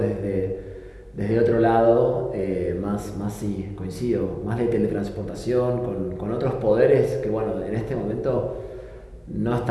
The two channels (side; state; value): both; identical; correlation 1.00